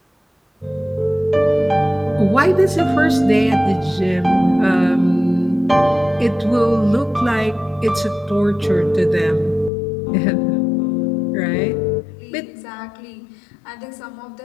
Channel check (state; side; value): drops out; right; at 9.7 s